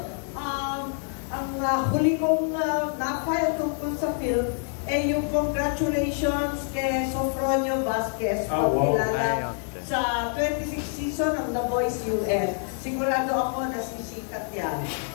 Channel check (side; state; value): right; silent; 56 dB below the other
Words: ang huli kong na-file tungkol sa film ay yung congratulations kay Sofronio Vasquez, kilala sa 26 season ng The Voice US. Sigurado ako na sisikat yan.